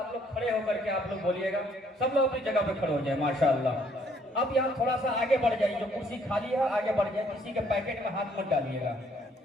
लोग खड़े होकर के आप लोग बोलिएगा। सब लोग अपनी जगह पे खड़े हो जाए, माशाअल्लाह। अब यहाँ थोड़ा सा आगे बढ़ जाइए, जो कुर्सी खाली है आगे बढ़ जाए, किसी के पैकेट में हाथ मत डालिएगा।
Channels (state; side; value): normal; both; correlation 0.65